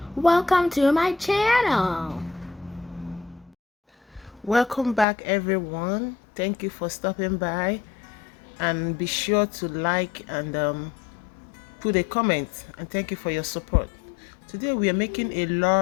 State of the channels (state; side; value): drops out; right; at 5.1 s